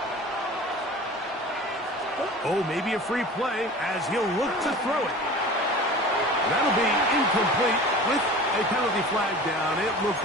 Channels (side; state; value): both; normal; correlation 0.39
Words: Oh, maybe a free play as he'll look to throw it. That'll be incomplete with a penalty flag down. It looked